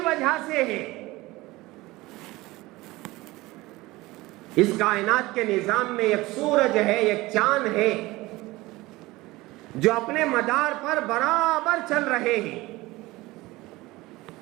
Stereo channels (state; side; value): quieter; left; 20.0 dB